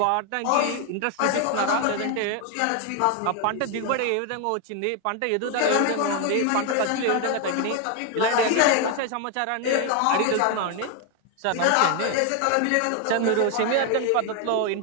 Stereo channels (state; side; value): different; both; correlation 0.01